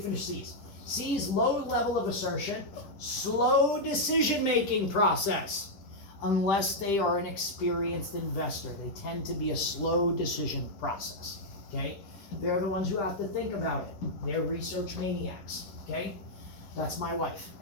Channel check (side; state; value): right; late; 10 ms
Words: C's. C's, low level of assertion, slow decision-making process. Unless they are an experienced investor, they tend to be a slow decision process, okay? They're the ones who have to think about it. They're research maniacs, okay? That's my wife.